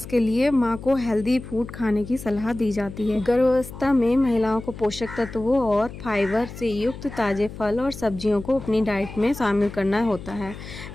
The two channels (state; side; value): noise; left; hum, 13 dB below the sound